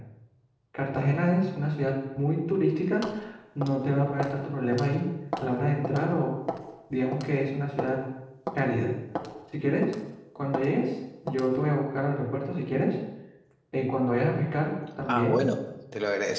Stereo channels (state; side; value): identical; both; correlation 1.00